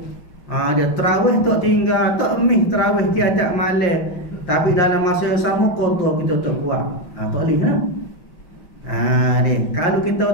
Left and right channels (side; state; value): right; late; 5.7 ms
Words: Dia tarawih tak tinggal, tak emih tarawih tiada malam, tapi dalam masa yang sama qada kita tak buat. Tak boleh lah. Kalau